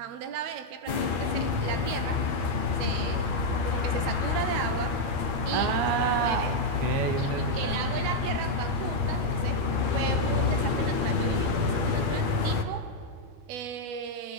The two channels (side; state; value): left; late; 12 ms